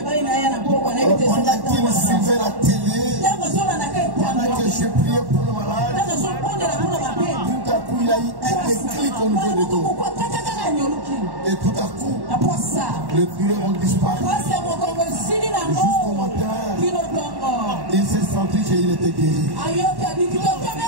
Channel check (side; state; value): left; late; 1.1 ms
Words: Pendant qu'il suivait la télé, pendant que je priais pour le malade, tout à coup, il a eu un déclic au niveau des dos. Et tout à coup, les douleurs ont disparu. Jusqu'au matin, il s'est senti qu'il était guéri.